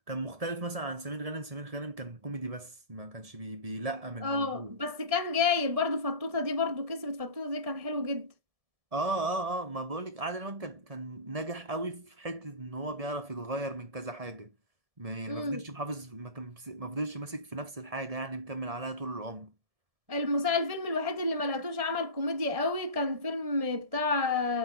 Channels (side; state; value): left; late; 1.7 ms